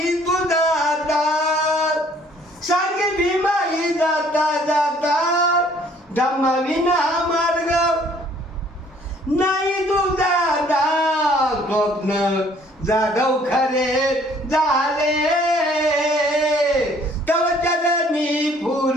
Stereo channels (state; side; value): normal; both; correlation 0.59